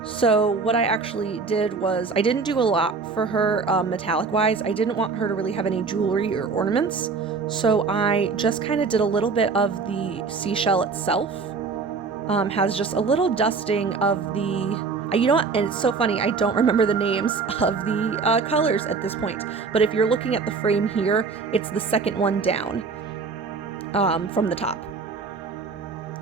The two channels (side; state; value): left; quieter; 4.7 dB